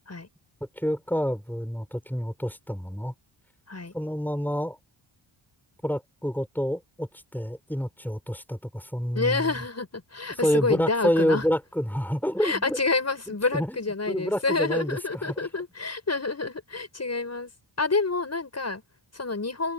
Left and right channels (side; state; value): both; normal; correlation 0.38